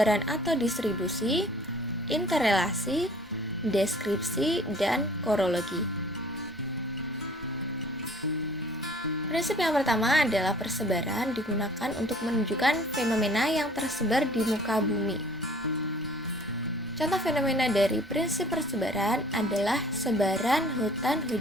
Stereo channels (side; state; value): both; normal; correlation 0.52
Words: atau distribusi, interrelasi, deskripsi, dan korologi. Prinsip yang pertama adalah persebaran digunakan untuk menunjukkan fenomena yang tersebar di muka bumi. Contoh fenomena dari prinsip persebaran adalah sebaran hutan